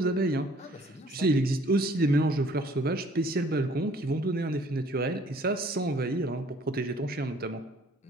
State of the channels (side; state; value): both; normal; correlation 0.57